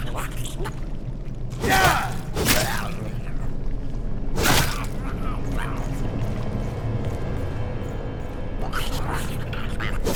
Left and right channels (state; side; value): identical; both; correlation 1.00